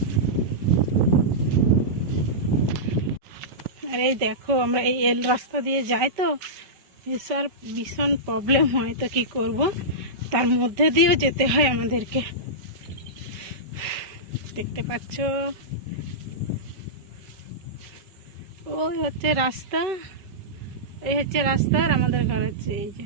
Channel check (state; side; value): late; left; 5.2 ms